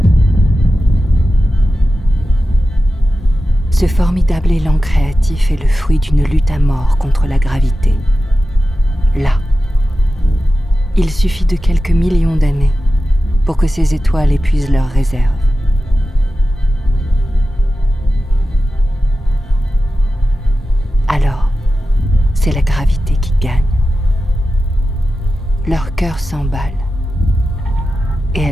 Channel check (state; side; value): normal; both; correlation 0.93